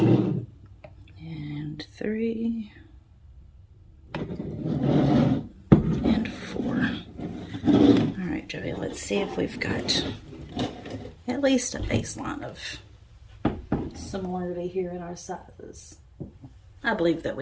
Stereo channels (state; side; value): identical; both; correlation 1.00